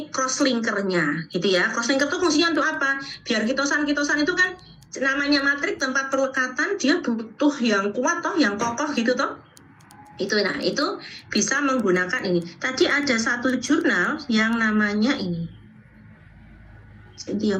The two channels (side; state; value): both; identical; correlation 1.00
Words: cross-linkernya, gitu ya. Cross-linker itu fungsinya untuk apa? Biar kitosan-kitosan itu kan namanya matrik tempat perlekatan, dia butuh yang kuat toh, yang kokoh gitu toh. Itu bisa menggunakan ini. Tadi ada satu jurnal yang namanya ini.